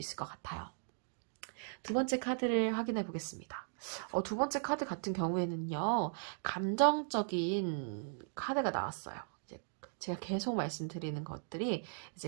것 같아요. 두 번째 카드를 확인해 보겠습니다. 두 번째 카드 같은 경우에는요, 감정적인 카드가 나왔어요. 제가 계속 말씀드리는 것들이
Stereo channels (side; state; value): left; silent; digital silence